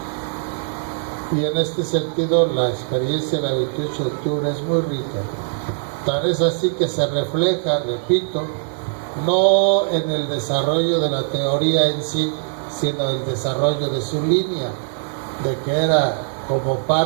Y en este sentido, la experiencia del 28 de octubre es muy rica. Tal es así que se refleja, repito, no en el desarrollo de la teoría en sí, sino el desarrollo de su línea, de que era como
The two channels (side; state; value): left; silent; digital silence